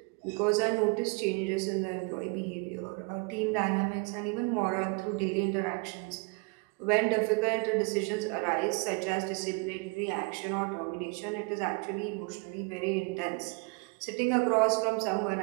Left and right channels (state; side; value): quieter; left; 30.0 dB